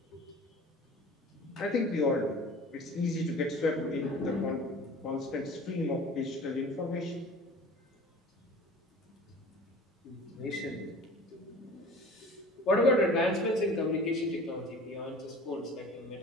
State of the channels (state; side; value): normal; both; correlation 0.43